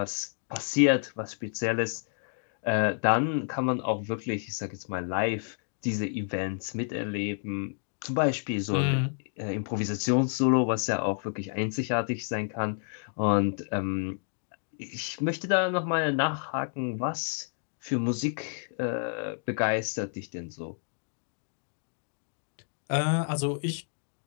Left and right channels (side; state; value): right; silent; digital silence